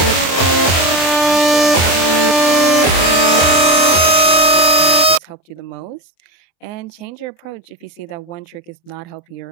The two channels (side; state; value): right; late; 24 ms